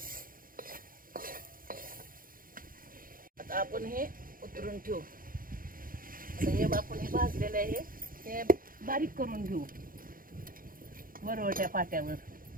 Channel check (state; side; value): late; left; 0.41 ms